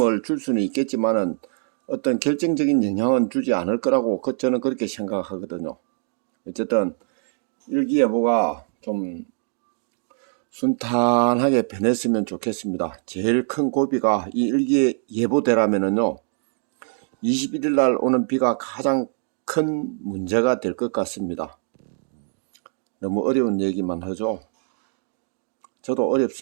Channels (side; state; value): left; silent; 63 dB below the other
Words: 줄 수는 있겠지만은 어떤 결정적인 영향은 주지 않을 거라고 저는 그렇게 생각하거든요. 어쨌든 일기예보가 좀 순탄하게 변했으면 좋겠습니다. 제일 큰 고비가 이 일기예보대라면은요, 21일 날 오는 비가 가장 큰 문제가 될 것 같습니다. 너무 어려운 얘기만 하죠. 저도